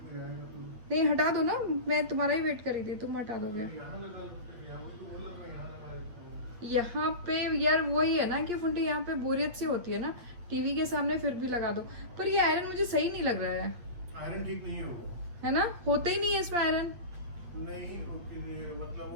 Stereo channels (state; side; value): late; left; 8.3 ms